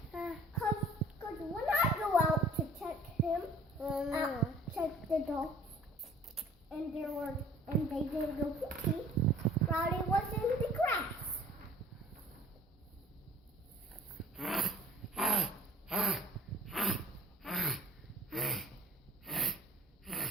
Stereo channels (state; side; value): normal; both; correlation 0.51